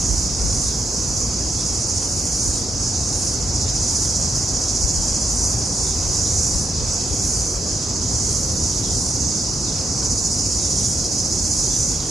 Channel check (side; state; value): both; normal; correlation 0.80